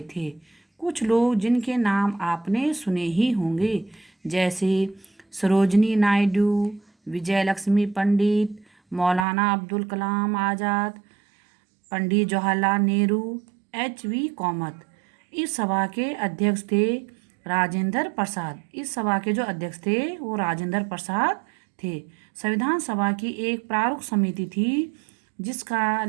थे। कुछ लोग जिनके नाम आपने सुने ही होंगे, जैसे सरोजनी नायडू, विजयलक्ष्मी पंडित, मौलाना अब्दुल कलाम आज़ाद, पंडित जवाहरलाल नेहरू, H.V. कामत। इस सभा के अध्यक्ष थे राजेंद्र प्रसाद थे। संविधान सभा की एक प्रारूप समिति थी जिसका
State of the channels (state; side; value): drops out; left; at 9.2 s